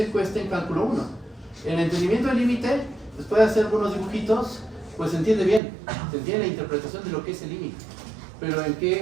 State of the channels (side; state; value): left; drops out; at 5.6 s